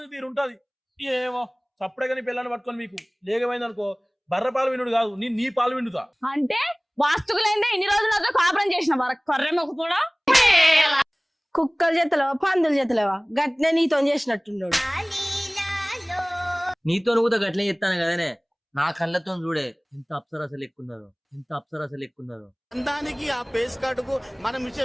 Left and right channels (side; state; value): both; identical; correlation 1.00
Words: తీరు ఉంటది. ఏమో చప్పుడే కానీ పిల్లని పట్టుకొని మీకు లేకపోయింది అనుకో, బర్ర పాలు వినుడు కాదు, నీ పాలు విండుతా. అంటే వాస్తుకులైందే ఇన్ని రోజులు నాతో కాపురం చేసిన కర్రె మొక్క కూడా. కుక్కల చేతలేవా పందుల చేతలేవా? గట్నే నీతో చేసినట్టున్నాడు. నీతో నువ్వు గట్లే చెప్తాను కదనే, నా కళ్ళతో చూడే ఎంత అప్సరసలు ఎక్కున్నదో, ఎంత అప్సరసలు ఎక్కున్నదో. దానికి ఆ పేస్ కార్డుకు మనం